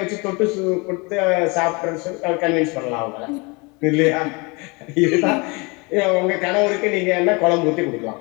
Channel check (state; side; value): quieter; right; 28.5 dB